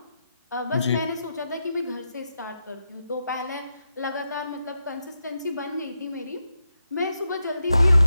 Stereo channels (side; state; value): both; inverted; correlation -0.86